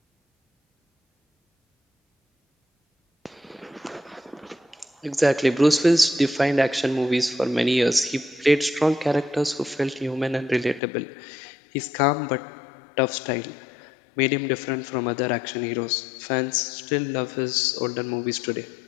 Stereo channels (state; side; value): drops out; right; at 10.8 s